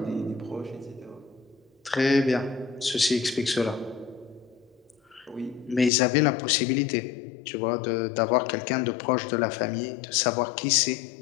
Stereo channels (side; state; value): right; drops out; at 5.9 s